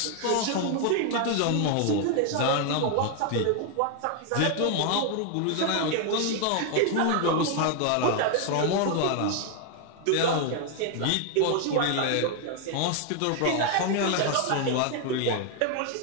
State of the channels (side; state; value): both; different; correlation 0.00